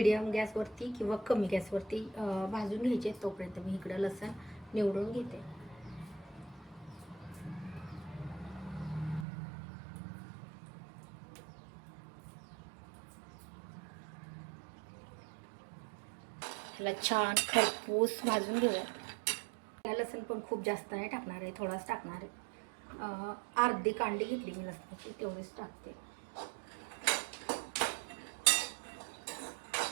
गॅसवरती किंवा कमी गॅसवरती भाजून घ्यायचे. तोपर्यंत मी इकडं लसूण निवडून घेते. त्याला छान खरपूस भाजून घेऊया. लसूण पण खूप जास्त नाही टाकणार आहे, थोडाच टाकणार आहे. अर्धी कांडी घेतली मी लसणाची, तेवढीच टाकते.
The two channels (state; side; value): drops out; left; at 9.2 s